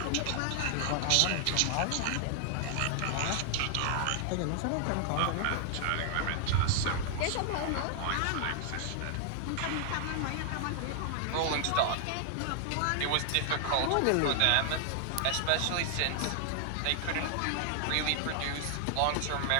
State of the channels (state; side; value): different; both; correlation 0.00